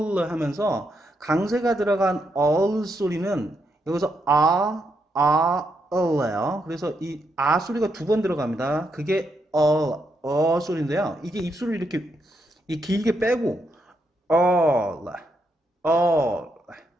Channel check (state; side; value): normal; both; correlation 0.80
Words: 하면서 강세가 들어간 all 소리는 여기서 all예요. 그래서 이 소리가 두 번 들어갑니다. 그게 so리인데요. 이게 입술을 이렇게 길게 빼고 all